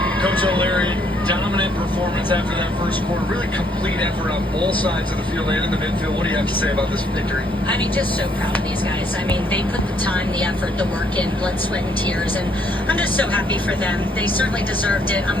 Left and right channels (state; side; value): normal; both; correlation 0.68